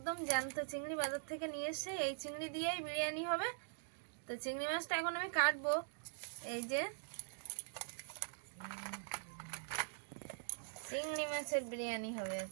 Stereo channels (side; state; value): left; silent; digital silence